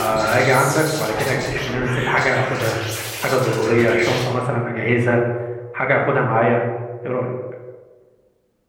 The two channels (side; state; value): both; identical; correlation 1.00